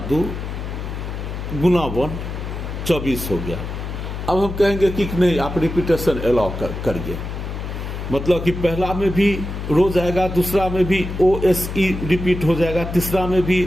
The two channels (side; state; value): left; noise; hum, 6 dB below the sound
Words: 2 गुना 1 24 हो गया। अब हम कहेंगे कि नहीं आप रिपीटेशन अलाउ करिए, मतलब कि पहला में भी रोज आएगा, दूसरा में भी OSE रिपीट हो जाएगा, तीसरा में भी